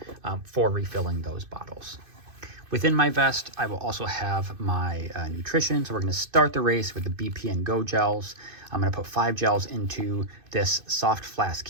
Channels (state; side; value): late; left; 2.5 ms